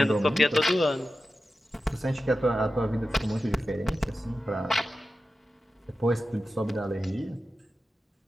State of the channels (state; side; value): normal; both; correlation 0.93